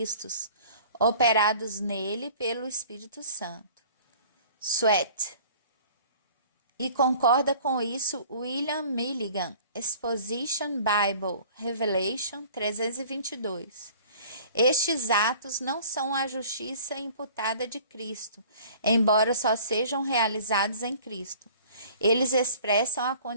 operados nele pelo Espírito Santo. Sweat. E concorda com isso William Milligan, Exposition Bible, Revelation 322. Estes atos não são a justiça imputada de Cristo, embora só sejam realizados em Cristo. Eles expressam a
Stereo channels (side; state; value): both; inverted; correlation -0.48